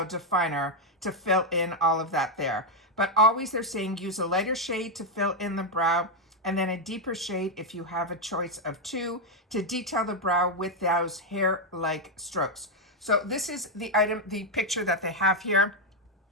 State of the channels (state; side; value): normal; both; correlation 0.02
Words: Definer, to fill in all of that there. But always they're saying use a lighter shade to fill in the brow, and then a deeper shade if you have a choice of two to detail the brow with those hair-like strokes. So this is the item, the picture that they have here.